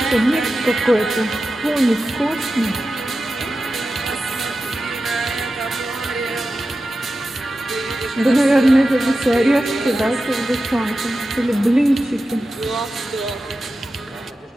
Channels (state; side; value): normal; both; correlation 0.92